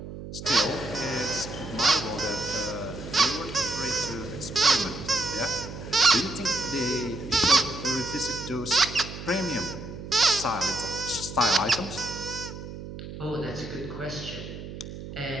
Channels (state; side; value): noise; right; hum, 10 dB below the sound